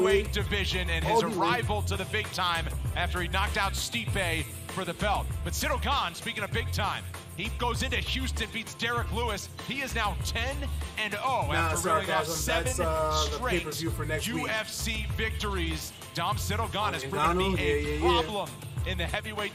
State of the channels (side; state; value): both; identical; correlation 1.00